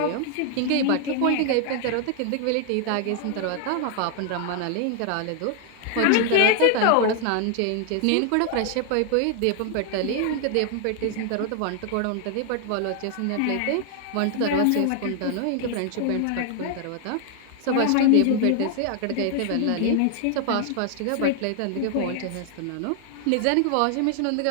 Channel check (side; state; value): both; different; correlation 0.00